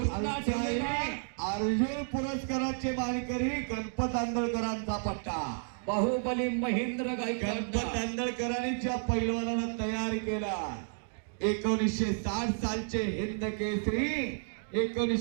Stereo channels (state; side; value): silent; left; digital silence